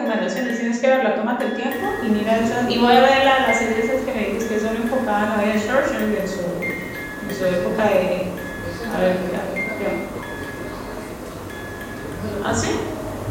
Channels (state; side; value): identical; both; correlation 1.00